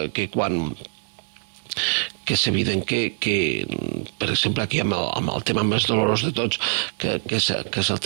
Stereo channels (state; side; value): silent; left; digital silence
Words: quan que és evident que per exemple, aquí amb el tema més dolorós de tots, que és el